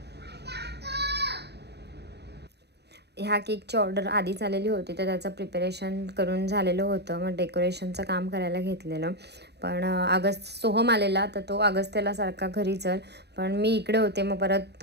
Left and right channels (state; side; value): late; left; 0.49 ms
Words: ह्या केकची ऑर्डर आधीच आलेली होती, तर त्याचं प्रिपरेशन करून झालेलं होतं. मग डेकोरेशनचं काम करायला घेतलेलं. पण सोहम आलेला, तर तो त्याला सारखा घरी चल, पण मी इकडे होते. मग परत